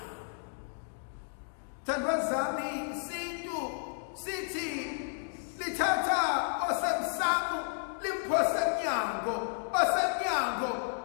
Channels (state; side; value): silent; right; digital silence